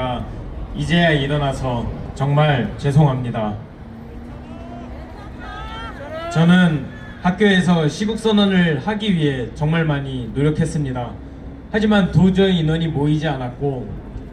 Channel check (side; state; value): both; identical; correlation 1.00